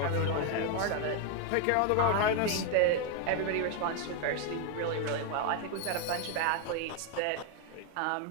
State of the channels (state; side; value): different; both; correlation 0.01